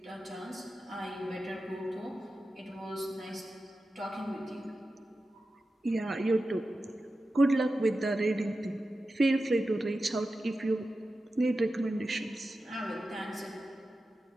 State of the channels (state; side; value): normal; both; correlation 0.93